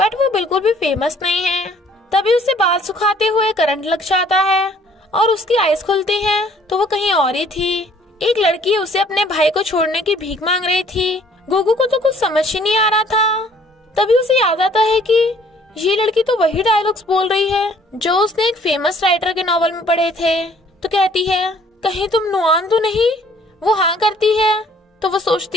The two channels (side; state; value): both; normal; correlation 0.59